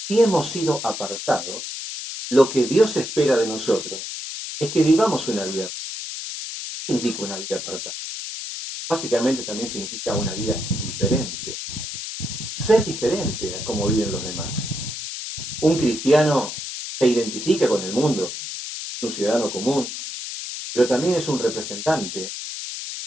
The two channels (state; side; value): noise; left; hiss, 7 dB below the sound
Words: Si hemos sido apartados, lo que Dios espera de nosotros es que vivamos una vida. ¿Qué significa una vida apartada? Básicamente también significa una vida diferente. Ser diferente a cómo viven los demás. Un cristiano se identifica con el mundo, es un ciudadano común, pero también es un representante